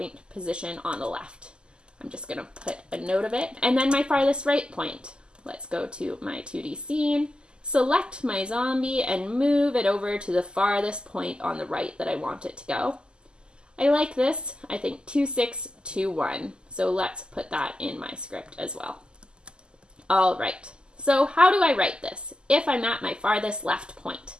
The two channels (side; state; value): left; late; 0.048 ms